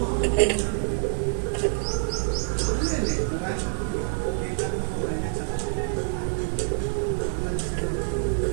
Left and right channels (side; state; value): left; silent; 58 dB below the other